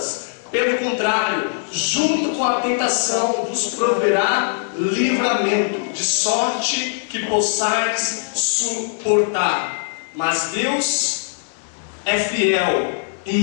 Pelo contrário, junto com a tentação vos proverá livramento, de sorte que possais suportar. Mas Deus é fiel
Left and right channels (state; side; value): silent; right; digital silence